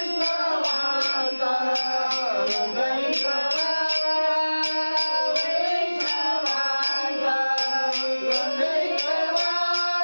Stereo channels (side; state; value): both; inverted; correlation -1.00